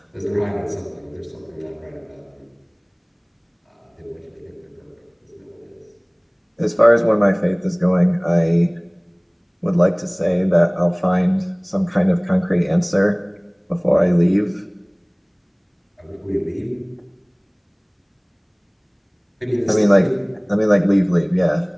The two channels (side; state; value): both; identical; correlation 1.00